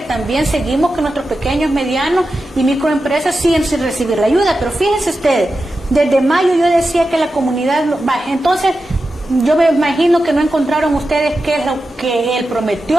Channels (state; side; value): normal; both; correlation 0.91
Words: también seguimos que nuestros pequeños, medianos y microempresas siguen sin recibir la ayuda. Pero fíjense ustedes, desde mayo yo decía que la comunidad baja. Entonces yo me imagino que no encontraron ustedes qué es lo que él